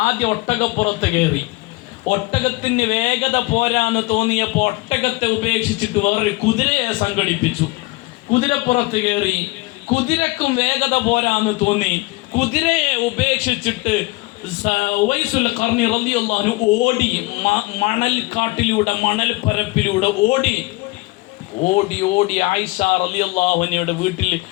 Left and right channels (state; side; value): quieter; right; 22.5 dB